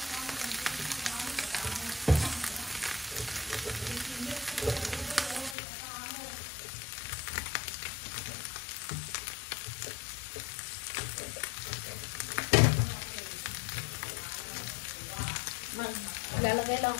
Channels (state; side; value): drops out; right; at 5.6 s